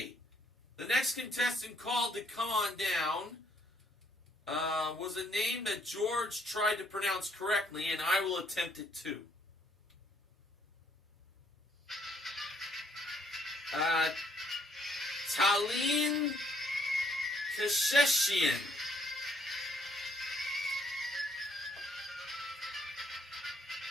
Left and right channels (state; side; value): normal; both; correlation 0.68